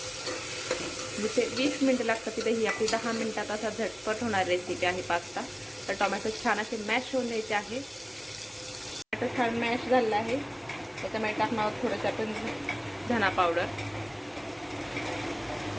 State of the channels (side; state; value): both; identical; correlation 1.00